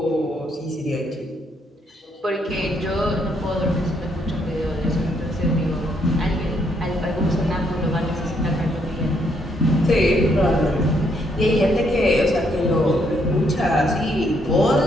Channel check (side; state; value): both; normal; correlation 0.73